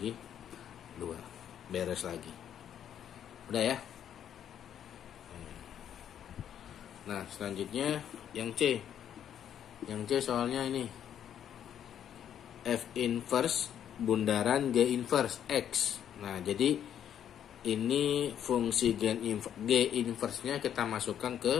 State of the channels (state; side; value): quieter; right; 9.6 dB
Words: 2. Beres lagi. Udah ya? Nah, selanjutnya yang C. Yang C soalnya ini F inverse bundaran G inverse X. Nah, jadi ini fungsi G inverse-nya kita masukkan